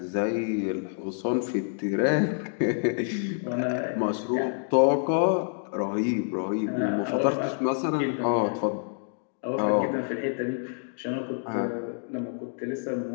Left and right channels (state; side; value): silent; right; 60 dB below the other